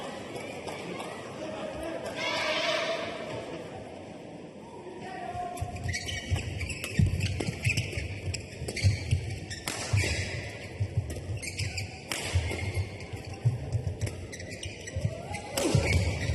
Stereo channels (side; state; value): both; identical; correlation 1.00